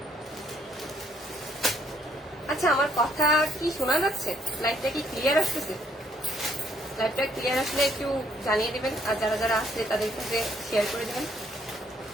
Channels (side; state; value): both; normal; correlation 0.67